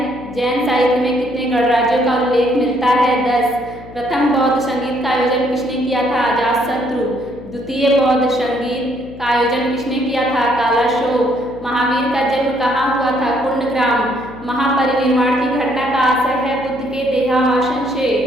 साहित्य में कितने गणराज्यों का उल्लेख मिलता है? 10। प्रथम बौद्ध संगीत का आयोजन किसने किया था? अजातशत्रु। द्वितीय बौद्ध संगीत का आयोजन किसने किया था? कालाशोक। महावीर का जन्म कहाँ हुआ था? कुंडग्राम। महापरिनिर्वाण की घटना का आशय है बुद्ध के देहावसान से।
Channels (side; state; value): left; noise; hum, 17 dB below the sound